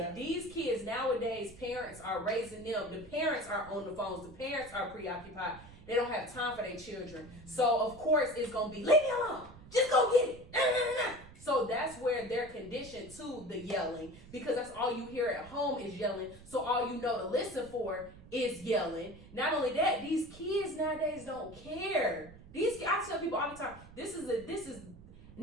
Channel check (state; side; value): noise; right; rumble, 19 dB below the sound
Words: these kids nowadays, parents are raising them. The parents are on the phones. The parents are preoccupied. They don't have time for their children. So, of course, it's going to be, leave me alone. Just go get it. Nah, nah, nah. So that's where they're conditioned to the yelling, because that's all you hear at home is yelling. So all you know to listen for is yelling. Not only that, these kids nowadays don't care. I tell people all the time, this is